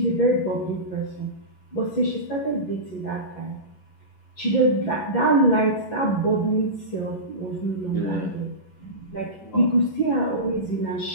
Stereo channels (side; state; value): right; late; 11 ms